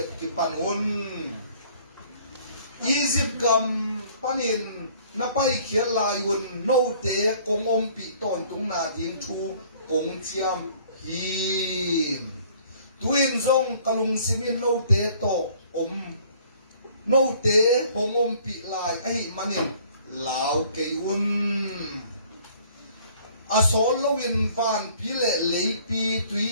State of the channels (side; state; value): both; inverted; correlation -0.56